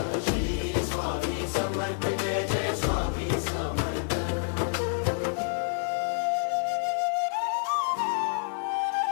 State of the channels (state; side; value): silent; right; digital silence